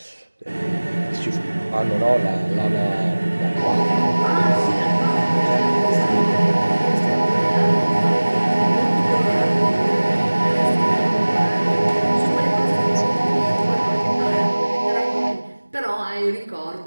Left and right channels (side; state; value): both; inverted; correlation -1.00